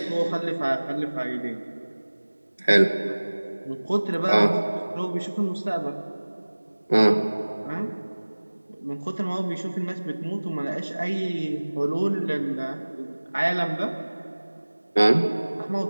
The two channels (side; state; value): both; inverted; correlation -1.00